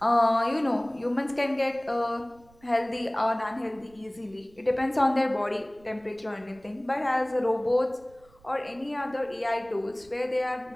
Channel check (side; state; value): right; noise; rumble, 28 dB below the sound